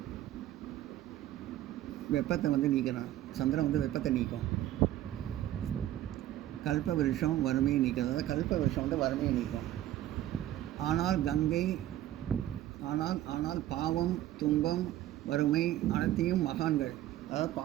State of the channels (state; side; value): quieter; left; 13.5 dB